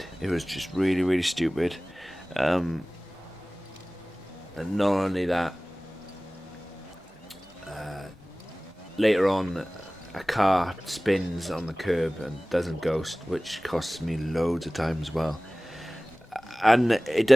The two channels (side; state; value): both; normal; correlation 0.98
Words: It was just really, really stupid. And not only that, later on, a car spins on the curb and doesn't ghost, which costs me loads of time as well. And it